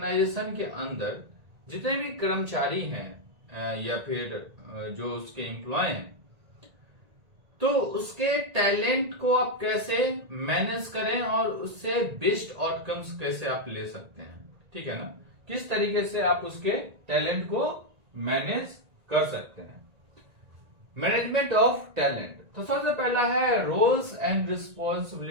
के अंदर जितने भी कर्मचारी हैं या फिर जो उसके एम्प्लॉय हैं, तो उसके टैलेंट को आप कैसे मैनेज करें और उससे बेस्ट आउटकम्स कैसे आप ले सकते हैं, ठीक है ना। किस तरीके से आप उसके टैलेंट को मैनेज कर सकते हैं। मैनेजमेंट ऑफ टैलेंट, तो सबसे पहला है रोल्स एंड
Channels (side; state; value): left; late; 1.9 ms